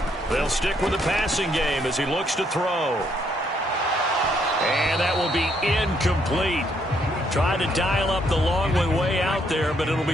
They'll stick with the passing game as he looks to throw. And that will be incomplete. Tried to dial up the long way out there, but it'll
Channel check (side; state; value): both; normal; correlation 0.71